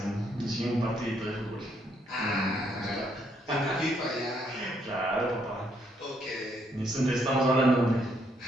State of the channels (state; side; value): normal; both; correlation 0.72